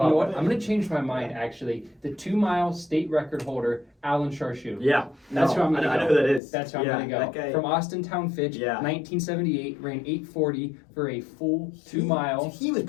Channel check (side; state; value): right; drops out; at 6.4 s